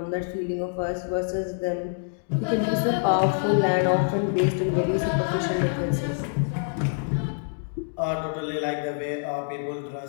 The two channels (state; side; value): silent; right; digital silence